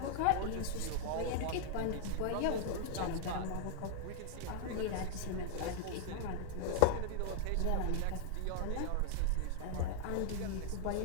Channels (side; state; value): both; different; correlation 0.00